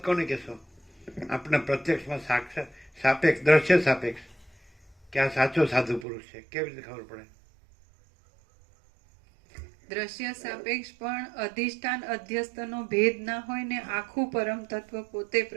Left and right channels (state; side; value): drops out; left; at 6.1 s